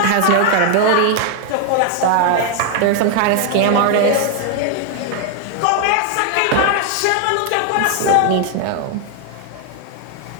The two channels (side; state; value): both; different; correlation 0.00